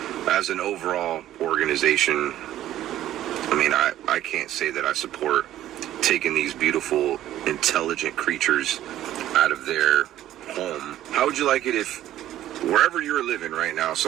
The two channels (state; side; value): quieter; left; 13.0 dB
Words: as an overall organization, I mean, I can't say that I support taking these beautiful, intelligent creatures out of their home. How would you like it if wherever you're living right now,